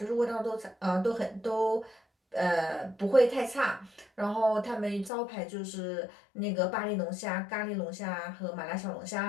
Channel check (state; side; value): drops out; right; at 5.1 s